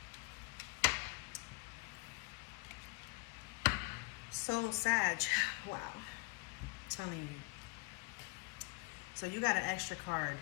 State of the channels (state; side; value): quieter; right; 28.1 dB